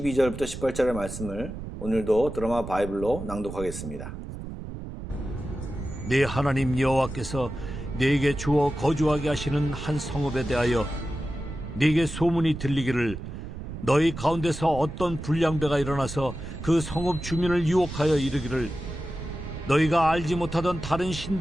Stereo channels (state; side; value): noise; right; rumble, 9 dB below the sound